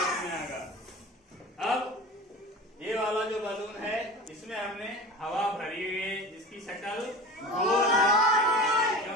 में आ गया। अब ये वाला जो बलून है इसमें हमने हवा भरी हुई है, जिसकी शक्ल गोल है,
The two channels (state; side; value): normal; both; correlation 0.33